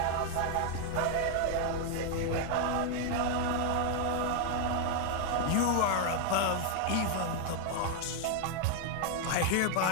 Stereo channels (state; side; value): different; both; correlation 0.00